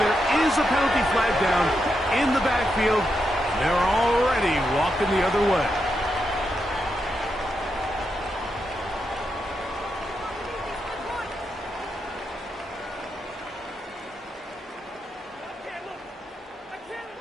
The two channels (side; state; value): both; normal; correlation 0.84